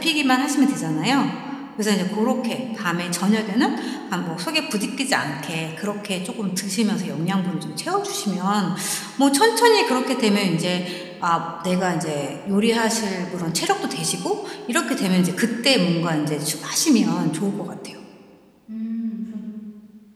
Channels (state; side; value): identical; both; correlation 1.00